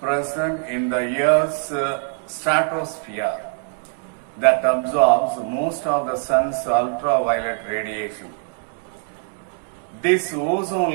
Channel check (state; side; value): silent; left; 63 dB below the other